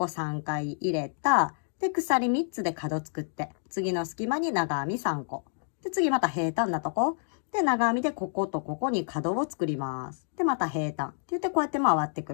3回入れた。で、鎖3つで角作って、次の隙間に長編み3個。で、次また平坦なとこ。で、長編みでこことここに角を作ります。で、また平坦。って言ってこうやって回ってく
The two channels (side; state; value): right; silent; digital silence